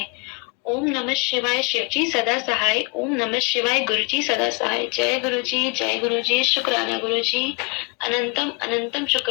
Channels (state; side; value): quieter; right; 29.8 dB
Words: ओम नमः शिवाय शिव जी सदा सहाय। ओम नमः शिवाय गुरु जी सदा सहाय। जय गुरु जी, जय गुरु जी, शुक्राना गुरु जी, अनंतम अनंतम